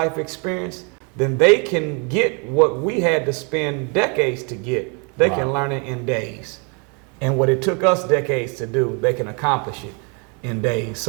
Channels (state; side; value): quieter; left; 34.2 dB